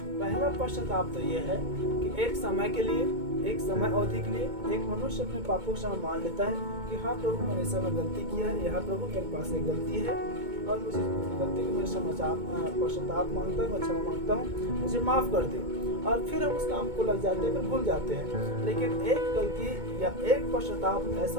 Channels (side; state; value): left; late; 2.2 ms